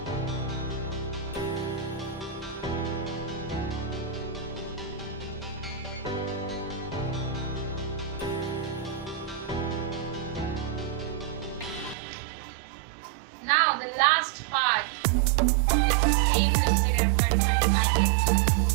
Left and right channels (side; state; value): left; drops out; at 12.0 s